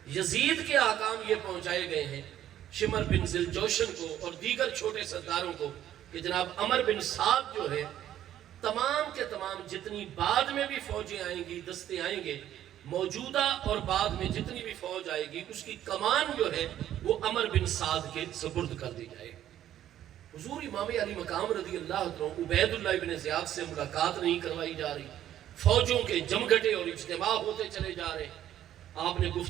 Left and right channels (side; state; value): left; quieter; 11.7 dB